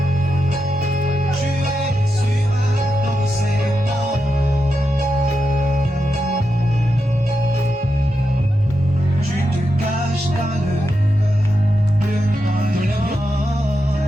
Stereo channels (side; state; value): both; normal; correlation 0.87